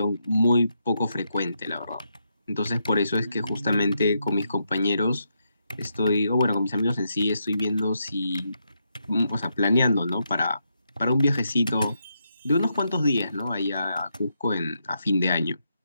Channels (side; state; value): both; inverted; correlation -0.81